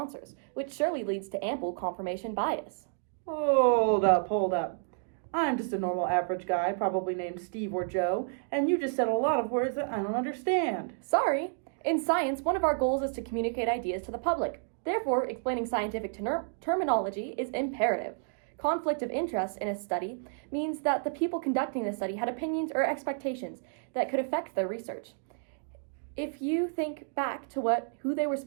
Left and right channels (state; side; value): silent; left; digital silence